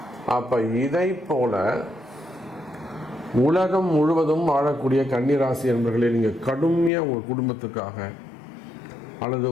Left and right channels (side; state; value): right; drops out; at 6.9 s